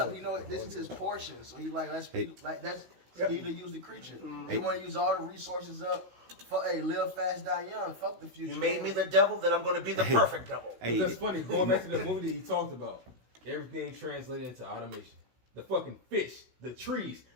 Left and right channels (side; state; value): left; late; 16 ms